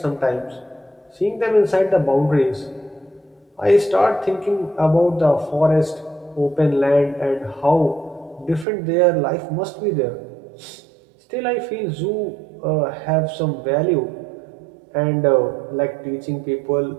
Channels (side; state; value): left; drops out; at 8.7 s